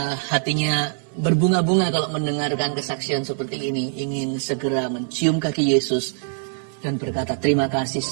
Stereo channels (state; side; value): silent; left; digital silence